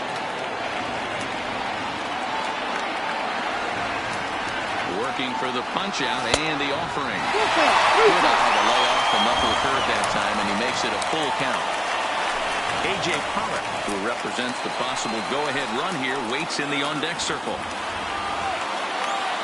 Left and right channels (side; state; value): both; identical; correlation 1.00